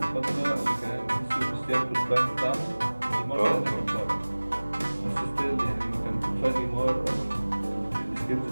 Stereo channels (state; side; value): inverted; both; correlation -1.00